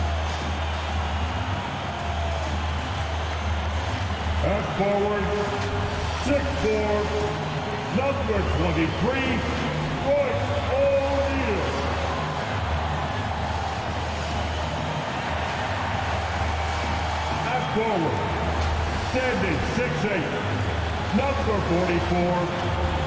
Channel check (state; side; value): identical; both; correlation 1.00